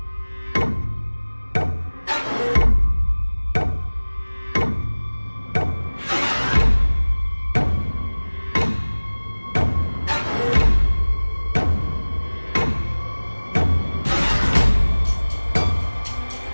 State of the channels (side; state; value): both; inverted; correlation -1.00